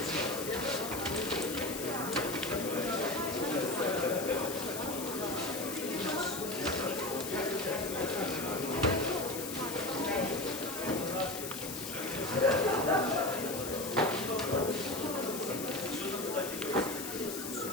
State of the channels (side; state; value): left; noise; hiss, 7 dB below the sound